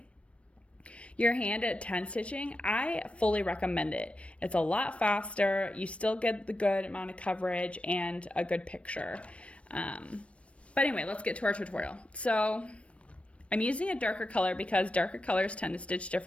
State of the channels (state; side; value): late; right; 0.062 ms